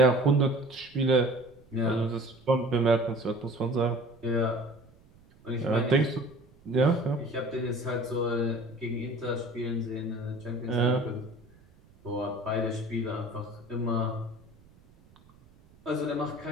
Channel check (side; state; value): right; noise; rumble, 27 dB below the sound